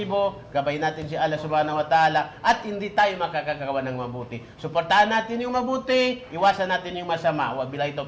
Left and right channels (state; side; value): identical; both; correlation 1.00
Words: gabay natin si Allah Subhanahu wa Ta'ala at hindi tayo makakagawa ng mabuti. Suportahan natin yung mabuti, iwasan natin yung masama. Wabillahi